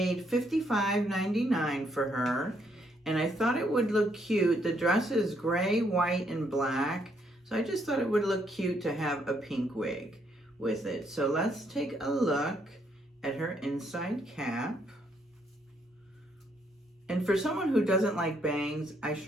$55.99 for her, and I thought it would look cute. The dress is gray, white, and black, so I just thought it would look cute to have a pink wig with it. So let's take a look at her inside cap. And for someone who doesn't like bangs, I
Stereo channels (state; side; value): normal; both; correlation 0.73